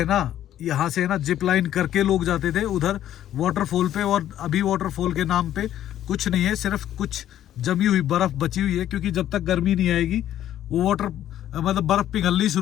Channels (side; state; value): right; quieter; 11.8 dB